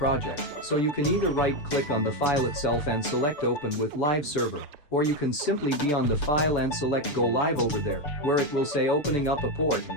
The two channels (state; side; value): late; right; 6.9 ms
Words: so you can either right-click on the file itself and select Open with Live Server, or you can simply be on the file and select Go Live over there, where it will say opening up a port,